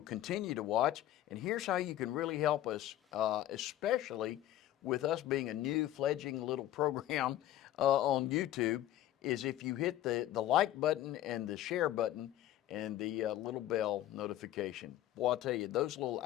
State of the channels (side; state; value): right; quieter; 13.3 dB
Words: continue to watch. And here's how you can really help us, especially with us being a new fledgling little program on YouTube, is if you hit the like button and the share button and the little bell notification. Boy, I'll tell you, those little